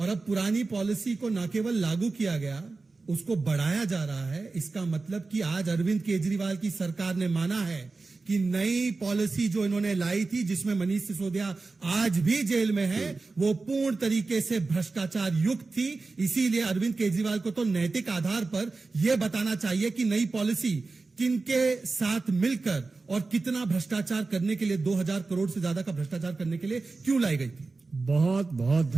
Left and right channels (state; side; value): quieter; left; 3.8 dB